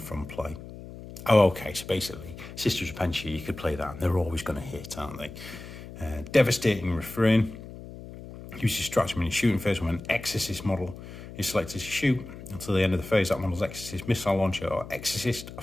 from play. Oh, okay, so basically, Sister's Repentia, you could play that, and they're always going to hit, aren't they? Devastating Refrain. Use your stratagem in your shooting phase when an Exorcist model is selected to shoot. Until the end of the phase, that model's Exorcist missile launcher or Exorcist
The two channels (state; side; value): noise; left; hum, 13 dB below the sound